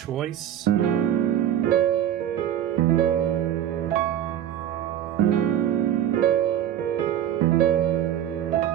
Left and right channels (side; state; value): left; quieter; 10.8 dB